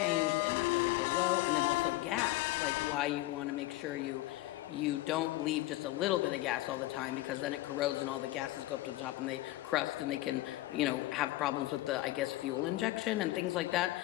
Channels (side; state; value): right; quieter; 17.6 dB